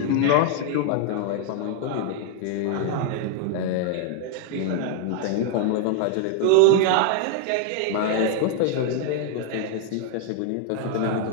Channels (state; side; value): different; both; correlation 0.00